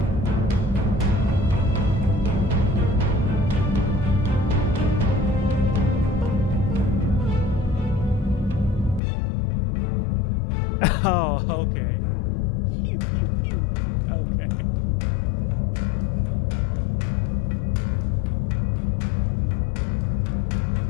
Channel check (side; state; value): right; drops out; at 9.0 s